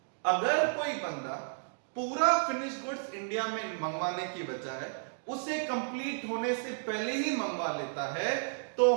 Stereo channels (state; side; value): silent; left; digital silence